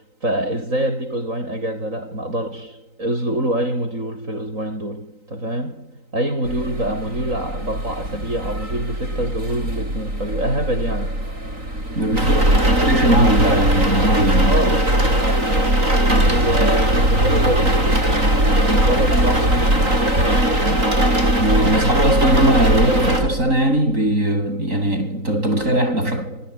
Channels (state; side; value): late; left; 3.9 ms